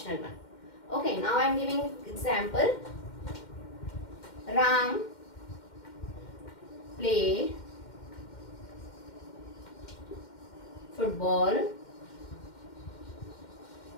one. Okay. Now I am giving example. Ram played football.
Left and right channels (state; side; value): late; right; 2.1 ms